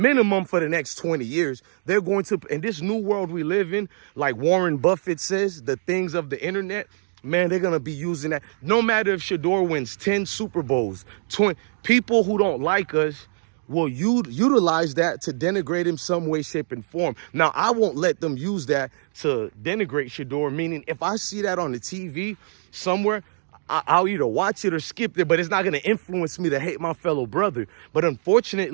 for the next 20 years. They're going to, in this new world we live in, like Warren Buffett says, the things of the internet, man, they're going to be using that. No matter if Shedeur wins 10 Super Bowls, 20, people who don't like us will utilize that to denigrate him some way, shape, and form. Now, I won't let them use that to denigrate Shedeur, meaning if I see that on the TV somewhere, I'll either watch it or skip it, but it's not going to influence me to hate my fellow brother. But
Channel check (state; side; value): silent; left; digital silence